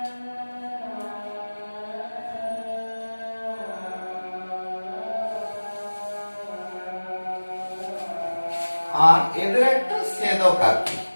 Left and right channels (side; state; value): both; inverted; correlation -1.00